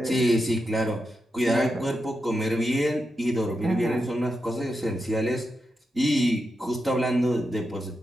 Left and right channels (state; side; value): normal; both; correlation 0.87